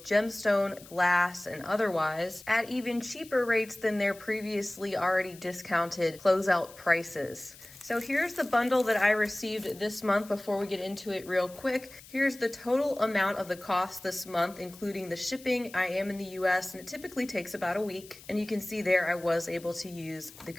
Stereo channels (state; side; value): noise; left; hiss, 20 dB below the sound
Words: gemstone, glass, and otherwise, at even cheaper rates than their previously already discounted closeout prices. So here's the bundle that I received this month before we get into it real quick. Here's the total amount of the cost this month, including the shipping. I am in the US and it typically takes about a week. And you can see there I was able to use the